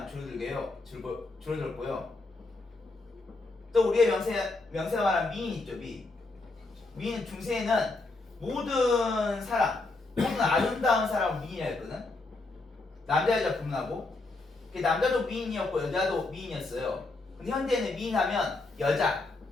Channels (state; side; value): quieter; right; 3.3 dB